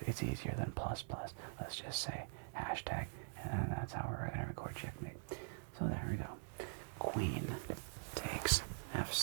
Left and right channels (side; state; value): left; silent; digital silence